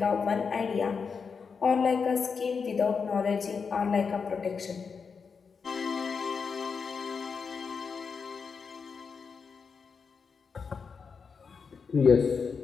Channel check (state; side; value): quieter; right; 5.6 dB